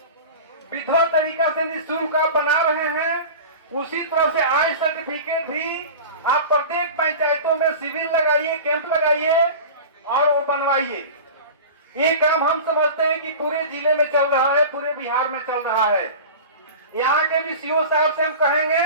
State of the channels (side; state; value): both; inverted; correlation -0.34